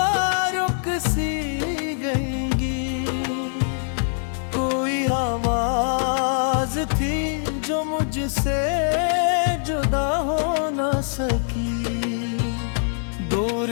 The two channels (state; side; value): silent; right; digital silence